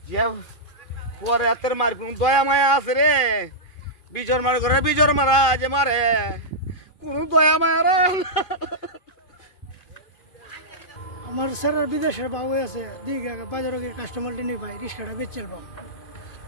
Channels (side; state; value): right; late; 2.5 ms